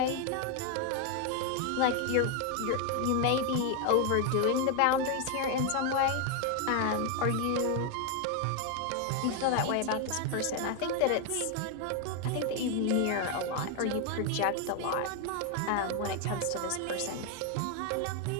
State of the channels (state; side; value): different; both; correlation 0.01